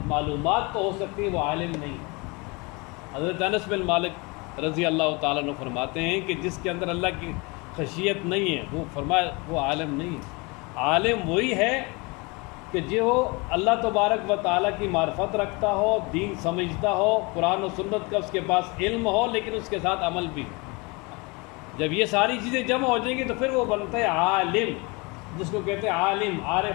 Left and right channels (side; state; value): right; quieter; 27.6 dB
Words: معلومات تو ہو سکتی ہے، وہ عالم نہیں ہے. حضرت انس بن مالک رضی اللہ تعالیٰ عنہ فرماتے ہیں کہ جس کے اندر اللہ کی خشیت نہیں ہے، وہ فرمایا وہ عالم نہیں ہے. عالم وہی ہے کہ جو اللہ تبارک و تعالیٰ کی معرفت رکھتا ہو، دین سمجھتا ہو، قرآن و سنت کا اس کے پاس علم ہو، لیکن اس کے ساتھ عمل بھی. جب یہ ساری چیزیں جمع ہو جائیں گی تو پھر وہ بنتا ہے عالم، جس کو کہتے ہیں عالم،